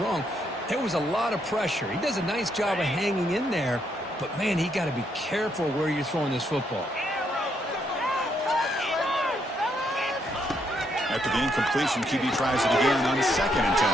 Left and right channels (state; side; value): normal; both; correlation 0.75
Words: wrong. There was a lot of pressure. He does a nice job of hanging in there. But, man, he got to be careful where you're throwing this football. After the incompletion, QB tries it again on 2nd and 10.